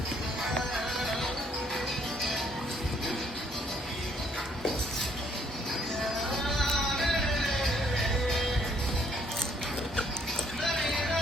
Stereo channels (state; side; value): normal; both; correlation 0.67